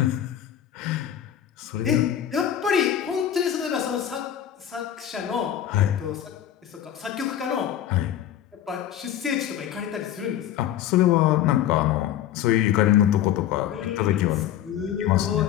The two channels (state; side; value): quieter; right; 10.8 dB